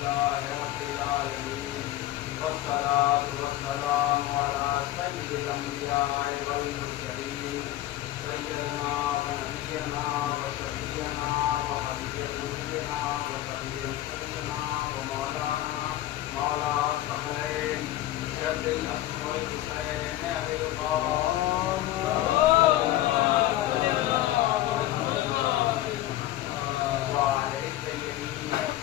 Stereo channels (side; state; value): right; quieter; 14.5 dB